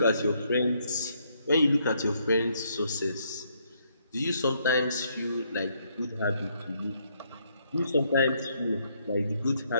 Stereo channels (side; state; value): both; inverted; correlation -0.72